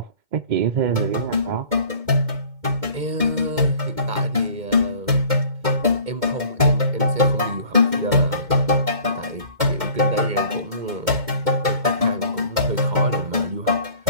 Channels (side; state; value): left; late; 2.1 ms